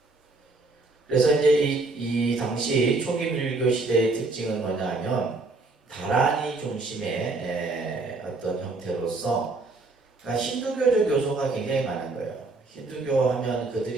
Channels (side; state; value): left; quieter; 3.4 dB